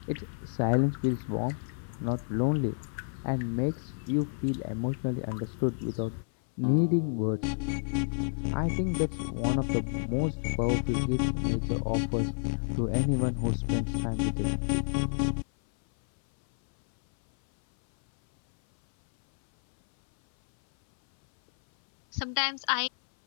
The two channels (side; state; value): right; silent; 57 dB below the other